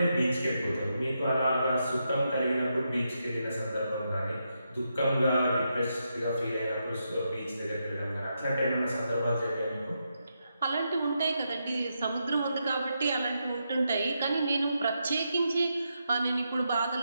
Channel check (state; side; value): inverted; both; correlation -0.83